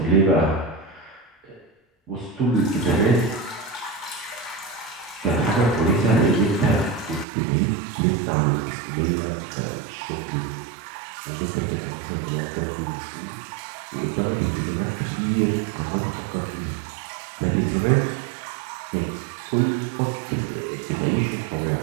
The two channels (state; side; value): drops out; left; at 7.2 s